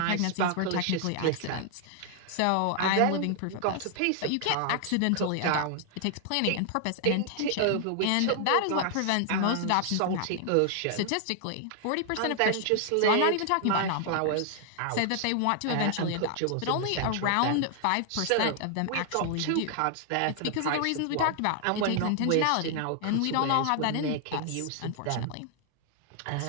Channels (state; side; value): different; both; correlation 0.00